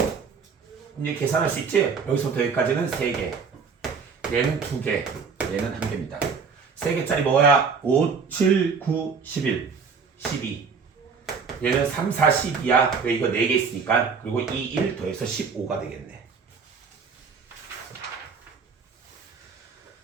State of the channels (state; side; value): quieter; left; 5.6 dB